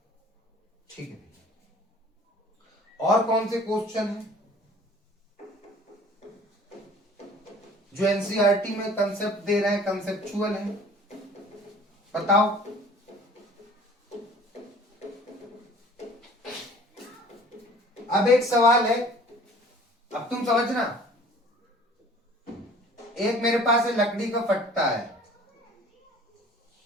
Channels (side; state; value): both; normal; correlation 0.49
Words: ठीक है भैया, और कौन से क्वेश्चन है जो एनसीईआरटी में कंसेप्ट दे रहे हैं, कंसेप्चुअल है? बताओ। अब एक सवाल है, अब तुम समझना। एक मेरे पास है लकड़ी का फट्टा है।